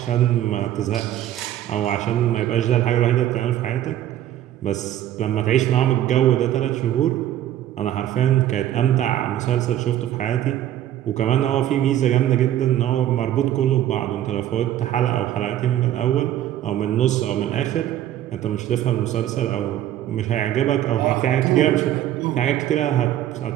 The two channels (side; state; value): left; quieter; 12.2 dB